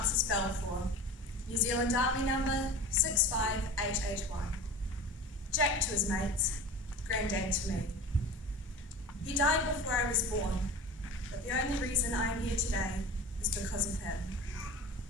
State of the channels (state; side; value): normal; both; correlation 0.35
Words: Balfour, New Zealand Army number 65881. Jack to his mates, Grandad to me. He died before I was born, but the only reason I am here today is because of him.